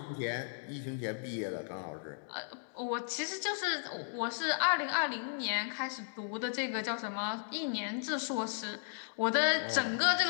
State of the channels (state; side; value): silent; right; digital silence